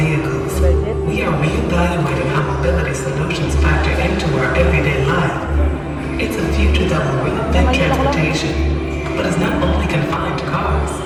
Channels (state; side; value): identical; both; correlation 1.00